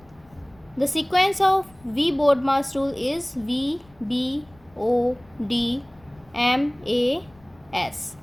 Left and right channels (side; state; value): left; noise; rumble, 27 dB below the sound